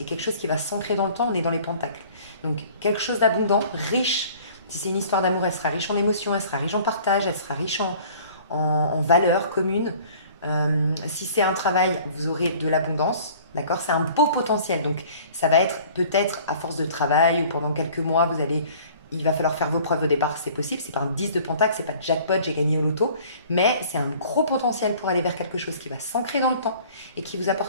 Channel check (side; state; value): both; inverted; correlation -0.50